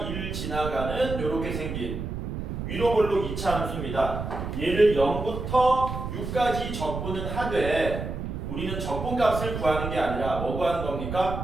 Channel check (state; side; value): noise; right; rumble, 5 dB below the sound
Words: 2를 지나가는 이렇게 생긴 위로 볼록 2차 함수입니다. 얘를 0부터 6까지 적분은 하되 우리는 적분값을 구하는 게 아니라 뭐 구하는